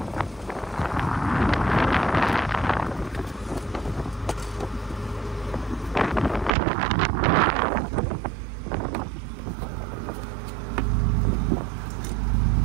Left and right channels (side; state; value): left; drops out; at 6.5 s